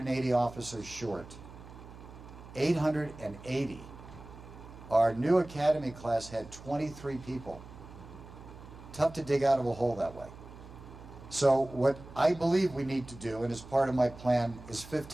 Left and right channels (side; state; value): right; noise; hum, 17 dB below the sound